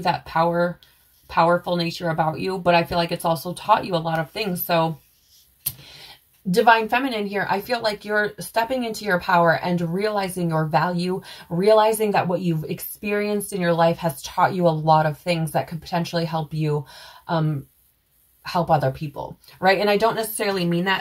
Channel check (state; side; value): identical; both; correlation 1.00